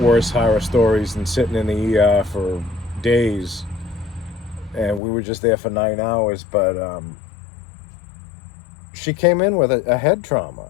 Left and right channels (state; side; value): drops out; right; at 5.0 s